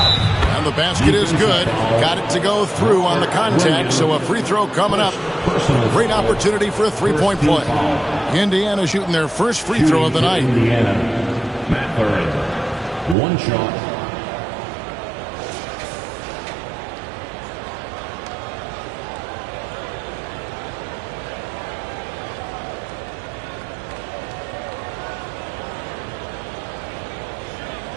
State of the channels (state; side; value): drops out; left; at 13.2 s